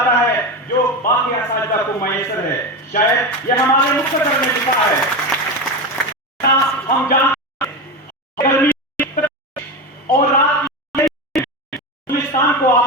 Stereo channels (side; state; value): both; normal; correlation 0.19